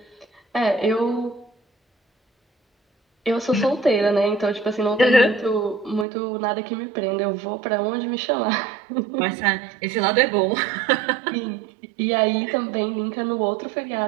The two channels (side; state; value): left; drops out; at 6.1 s